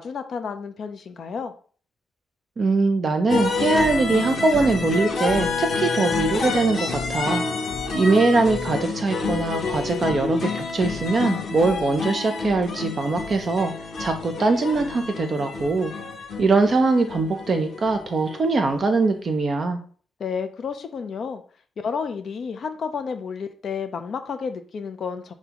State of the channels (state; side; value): normal; both; correlation 0.81